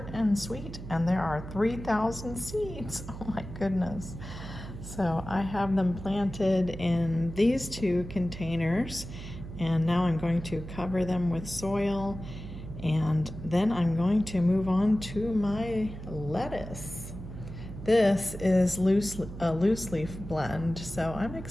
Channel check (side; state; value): right; noise; hum, 11 dB below the sound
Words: and Sweet, and there are 3,000 seeds. Oh my goodness. So I have them planted in these 2 containers, and now I'm going to cover them with soil, and then I'm going to move on to my lettuce. This is a loose leaf blend, so I'm